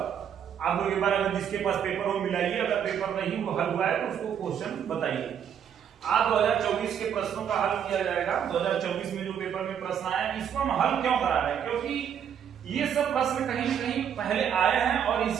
आप लोग एक बार अगर जिसके पास पेपर हो मिलाइए, अगर पेपर नहीं वो हल हुआ है तो उसको क्वेश्चन बताइए। आज 2024 के प्रश्नों का हल किया जाएगा। 2024 में जो पेपर में प्रश्न आए इसको हम हल क्यों करा रहे हैं, क्योंकि ये सब प्रश्न कहीं न कहीं पहले आए हैं और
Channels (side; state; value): left; quieter; 8.6 dB